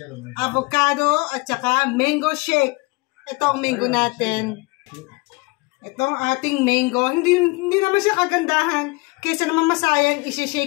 Avocado at saka mango shake. Ito ang mango natin. Ito ang ating mango. Hindi naman siya kagandahan. Kaysa naman masayang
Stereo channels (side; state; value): right; quieter; 25.5 dB